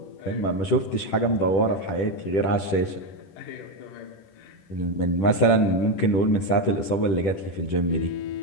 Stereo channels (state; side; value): late; right; 10 ms